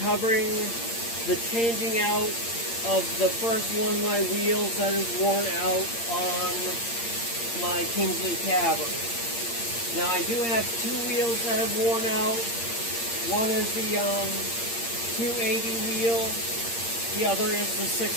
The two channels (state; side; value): late; right; 8.7 ms